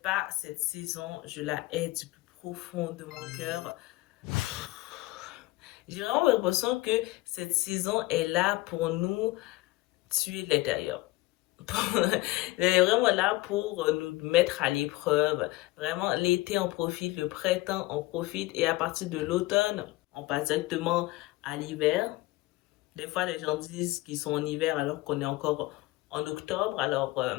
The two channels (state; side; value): quieter; right; 19.2 dB